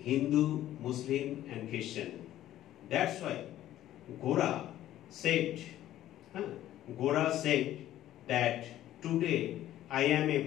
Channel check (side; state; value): right; quieter; 13.2 dB